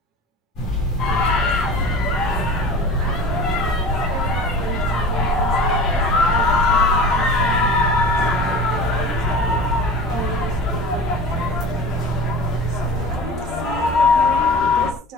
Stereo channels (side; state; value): both; normal; correlation 0.37